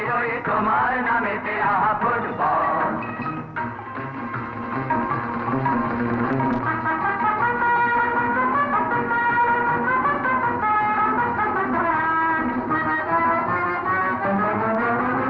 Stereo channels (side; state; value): both; identical; correlation 1.00